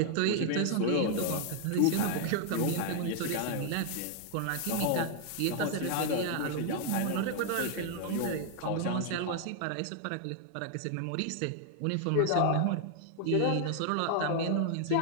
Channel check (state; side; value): different; both; correlation 0.00